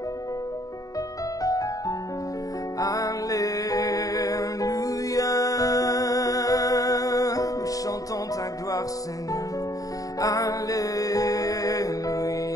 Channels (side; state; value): right; late; 0.17 ms